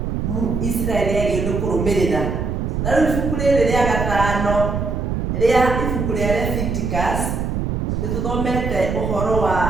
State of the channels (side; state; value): right; noise; rumble, 1 dB below the sound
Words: Israeli yagĩrĩirwo kũrũmĩrĩra. Na rĩu ibuku rĩrĩ rĩa gatano rĩa ibuku rĩa Leviticus nĩ tũthomete ũhoro wa